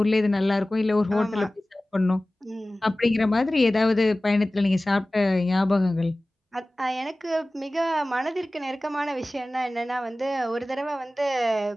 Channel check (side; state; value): both; normal; correlation 0.97